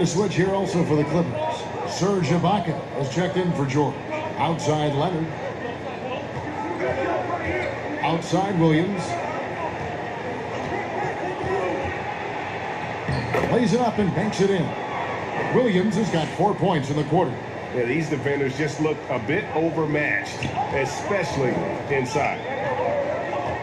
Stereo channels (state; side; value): identical; both; correlation 1.00